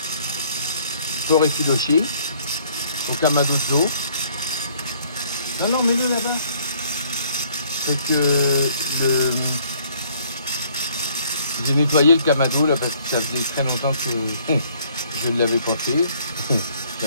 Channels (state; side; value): inverted; both; correlation -0.62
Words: porc effiloché au kamado de Joe. Non, mets-le là-bas. C'est que j'ai nettoyé le kamado là parce que ça faisait très longtemps que je ne l'avais pas fait.